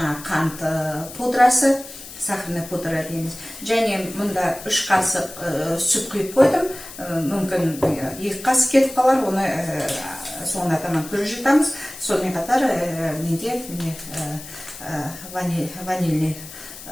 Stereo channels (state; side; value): noise; left; hiss, 14 dB below the sound